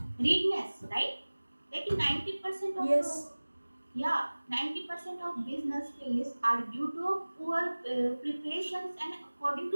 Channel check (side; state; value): both; inverted; correlation -1.00